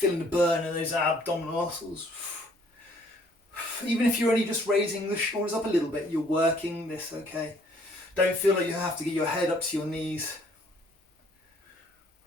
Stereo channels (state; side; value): normal; both; correlation 0.61